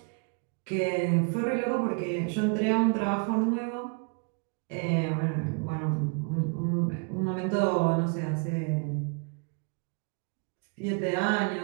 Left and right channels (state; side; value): quieter; left; 37.2 dB